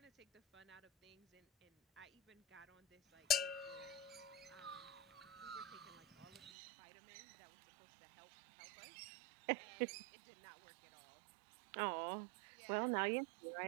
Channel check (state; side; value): drops out; left; at 6.5 s